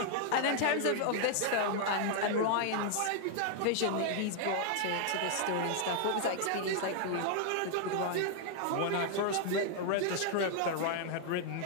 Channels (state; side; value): different; both; correlation 0.00